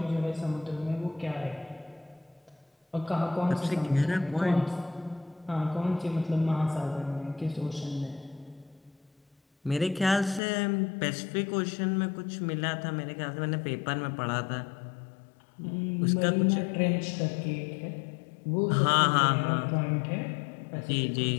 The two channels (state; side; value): drops out; right; at 10.4 s